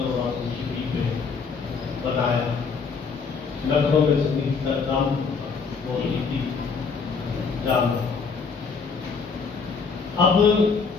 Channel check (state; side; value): quieter; right; 5.2 dB